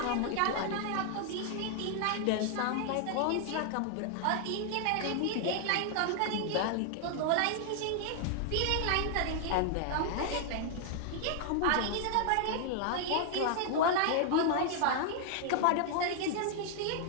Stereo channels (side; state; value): both; different; correlation 0.00